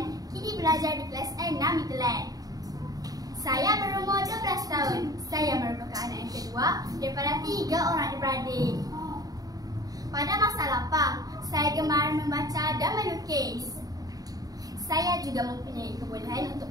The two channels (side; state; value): left; late; 0.18 ms